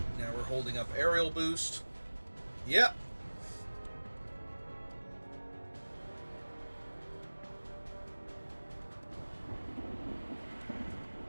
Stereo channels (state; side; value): inverted; both; correlation -1.00